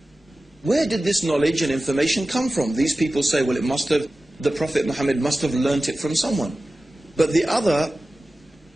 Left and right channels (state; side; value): normal; both; correlation 0.96